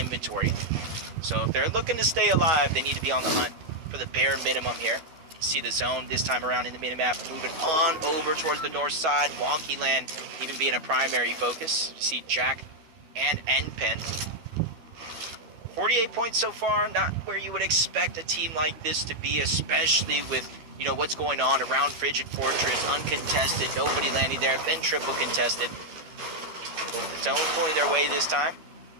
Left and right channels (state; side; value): late; left; 12 ms